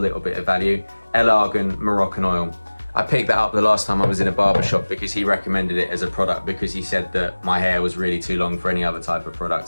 bit of value, El Argan Moroccan Oil. I picked that up the last time I was in a barber shop because he recommended it as a product because he said that my hair was really too long for any other type of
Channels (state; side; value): inverted; both; correlation -1.00